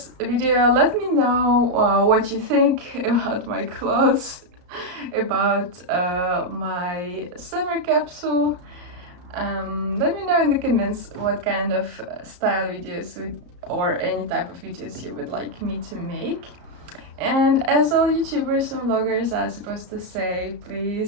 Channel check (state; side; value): late; left; 34 ms